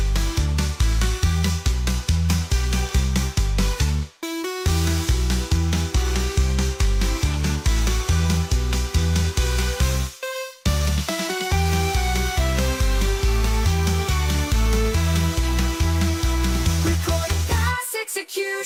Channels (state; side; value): identical; both; correlation 1.00